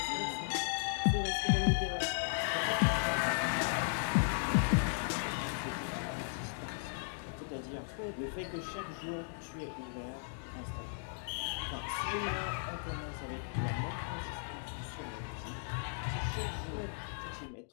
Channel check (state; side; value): silent; right; digital silence